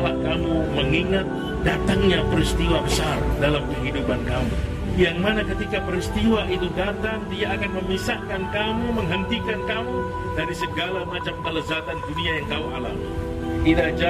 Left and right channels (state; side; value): identical; both; correlation 1.00